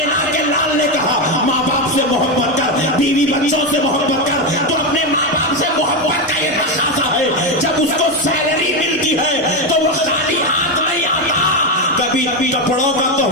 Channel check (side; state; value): both; normal; correlation 0.10